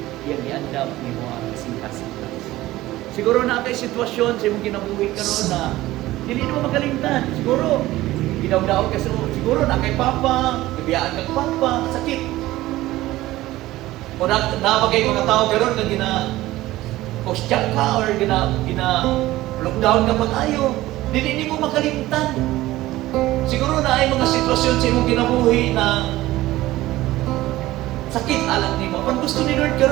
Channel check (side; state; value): left; quieter; 16.8 dB